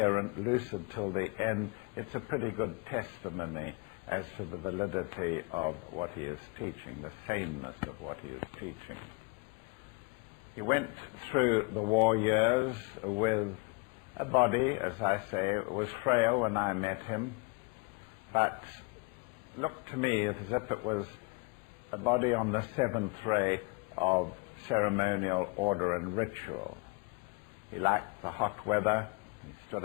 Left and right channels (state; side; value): quieter; right; 29.1 dB